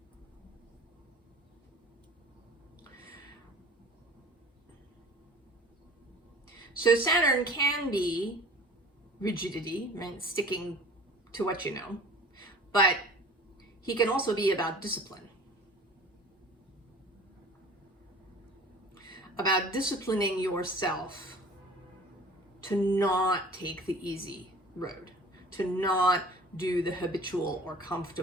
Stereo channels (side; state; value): both; normal; correlation 0.44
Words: So Saturn can be rigidity, right? Sticking to what you know, but he can also be about discipline. about disciplining yourself to not take the easy road, to not do the habitual or